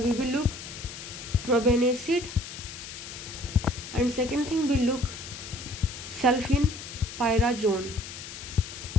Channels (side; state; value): left; noise; hiss, 11 dB below the sound